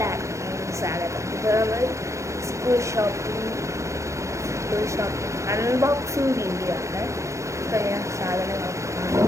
സ്വാഗതം. ഇപ്പോൾ നമ്മൾ സ്കൂൾ ഷോപ്പിംഗ് അൺബോക്സിങ് വീഡിയോ ആണ്. ഇപ്പോൾ ഞാൻ സാധനങ്ങളൊക്കെ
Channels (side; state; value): left; late; 0.15 ms